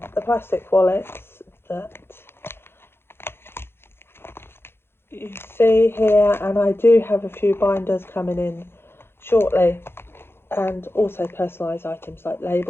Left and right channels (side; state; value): right; late; 0.11 ms